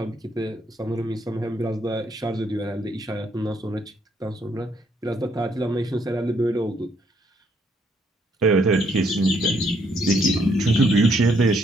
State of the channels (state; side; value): normal; both; correlation 0.70